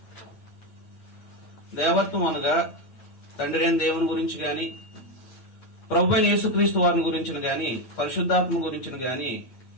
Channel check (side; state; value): right; late; 8.6 ms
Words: దేవత్వం అనగా తండ్రి అయిన దేవుని గురించి గాని, ప్రభువైన యేసుక్రీస్తు వారిని గురించిన గాని, పరిశుద్ధాత్మ గురించిన గాని